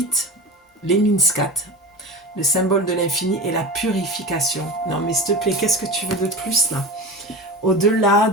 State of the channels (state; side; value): normal; both; correlation 0.30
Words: l'Eminascat, le symbole de l'infini et la purification. Non mais s'il te plaît, qu'est-ce que tu veux de plus là? Au-delà